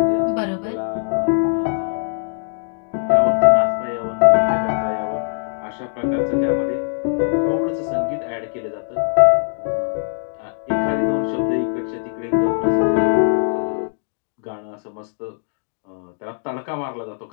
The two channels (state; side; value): silent; right; digital silence